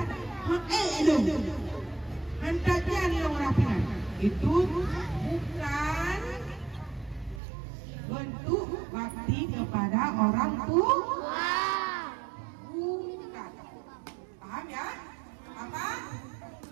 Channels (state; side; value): drops out; left; at 7.4 s